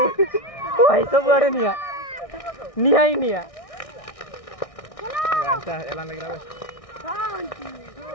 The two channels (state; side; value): late; right; 1.6 ms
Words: भाई सब आड़े निया निया ही निया वांटा एला लगरा बे